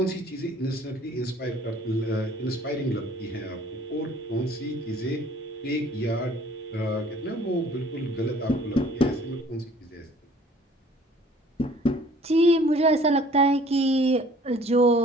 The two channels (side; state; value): both; normal; correlation 0.54